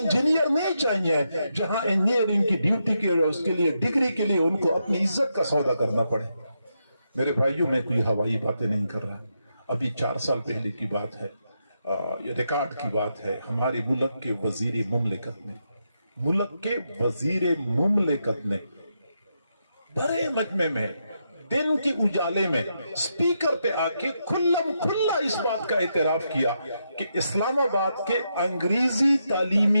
نہیں چاہیے، جہاں انجینئرنگ کی ڈیوٹی کے اس کے لیے ڈگری کے لیے ان کو اپنی عزت کا سودا کرنا پڑے۔ میرے بھائیوں، میں کوئی ہوائی باتیں نہیں کر رہا، ابھی 4 سال پہلے کی بات ہے، یہ ریکارڈ کی بات ہے۔ ہمارے ملک کے وزیر مملکت نے بڑے مجمع میں دن کے اجالے میں سپیکر پہ آ کے کھلم کھلا اس بات کا اعتراف کیا کہ اسلام آباد کے انگریزی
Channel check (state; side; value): inverted; both; correlation -0.83